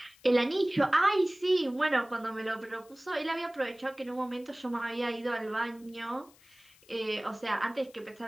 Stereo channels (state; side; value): noise; left; hiss, 27 dB below the sound